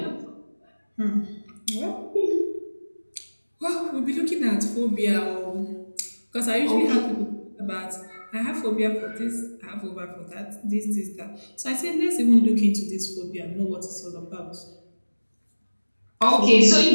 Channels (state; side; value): inverted; both; correlation -1.00